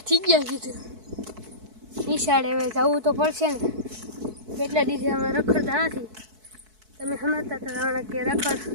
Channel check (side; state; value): left; late; 4.6 ms